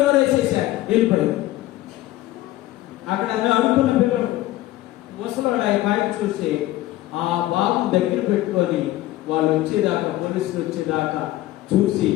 వేసేసారు, వెళ్ళిపోయాడు. అక్కడ అడుగుతున్న పిల్లలు ముసలోడు ఆ బయట చూసి ఆ బాబు దగ్గర పెట్టుకొని వాళ్ళు వచ్చేదాకా, పోలీసులు వచ్చేదాకా చూసి,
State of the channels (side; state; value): right; quieter; 16.0 dB